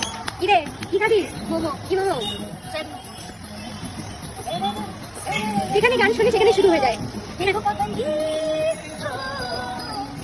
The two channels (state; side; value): identical; both; correlation 1.00